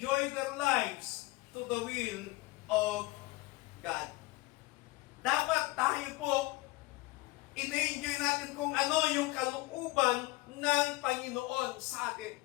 their lives to the will of God. Dapat tayo po, ina-enjoy natin kung ano yung kalooban ng Panginoon sa atin.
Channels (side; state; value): right; quieter; 21.0 dB